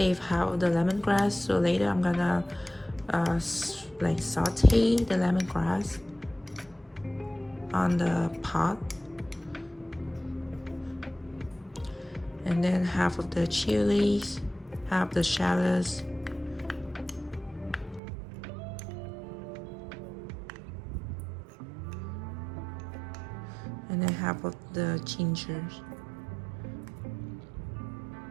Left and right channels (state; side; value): drops out; left; at 18.0 s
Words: half of the lemongrass, so later I'm gonna like saute the lemongrass on the pot. And then half of the chilies, half the shallots, and then half of the gingers.